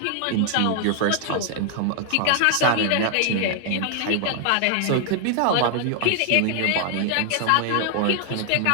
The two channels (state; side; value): different; both; correlation 0.00